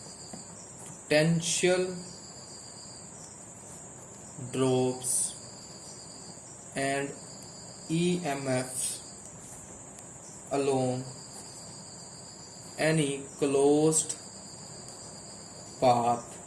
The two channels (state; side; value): identical; both; correlation 1.00